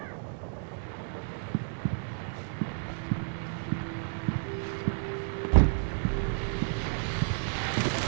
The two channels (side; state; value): left; silent; 57 dB below the other